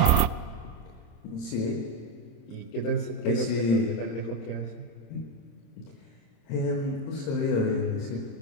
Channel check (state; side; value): late; right; 26 ms